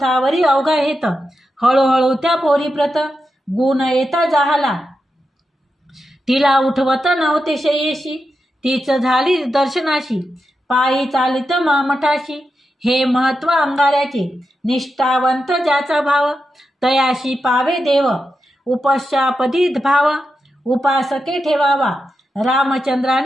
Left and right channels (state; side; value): normal; both; correlation 0.88